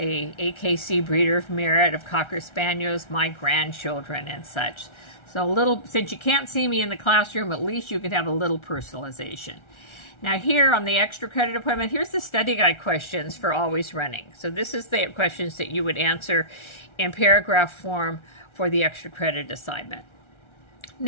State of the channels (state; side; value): late; right; 1.3 ms